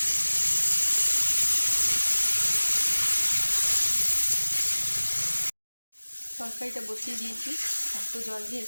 তরকারিটা বসিয়ে দিয়েছি, একটু জল দিয়ে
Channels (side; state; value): both; inverted; correlation -1.00